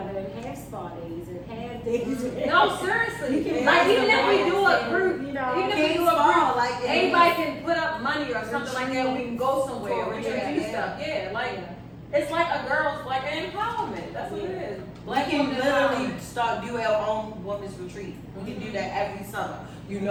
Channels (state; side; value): identical; both; correlation 1.00